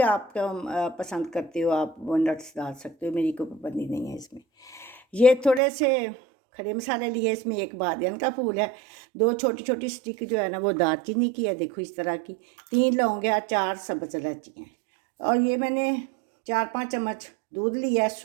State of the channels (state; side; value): drops out; left; at 5.6 s